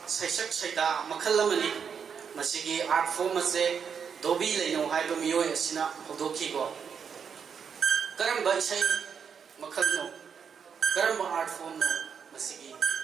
saisak saida makhal amani masigi art form ase Dobi Laino haiba miyoi asina hodokhi ko karamba isai makhal no karamba art form no masigi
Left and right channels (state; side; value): quieter; left; 6.8 dB